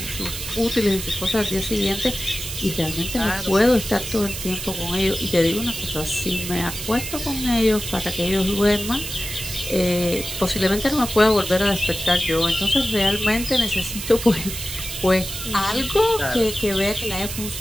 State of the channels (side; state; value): right; noise; hiss, 7 dB below the sound